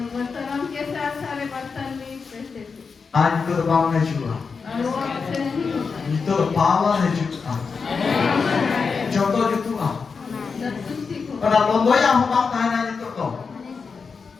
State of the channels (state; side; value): quieter; right; 5.2 dB